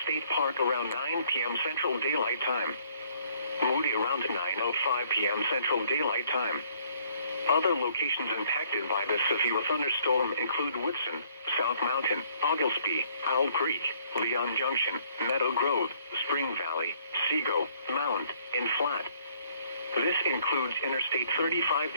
State Park around 9 p.m. Central Daylight Time. Moody around 9:05 p.m. Central Daylight Time. Other locations impacted by this severe thunderstorm include Whitson, South Mountain, Oglesby, Owl Creek, Leon Junction, Meadow Grove, Spring Valley, Sego, Mound, and Flat. This includes Interstate 35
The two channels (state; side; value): inverted; both; correlation -0.63